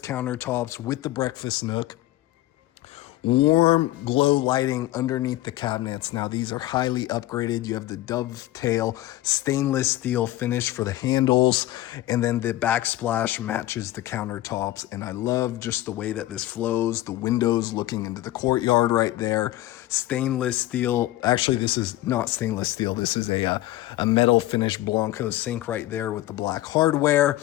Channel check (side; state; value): right; quieter; 15.9 dB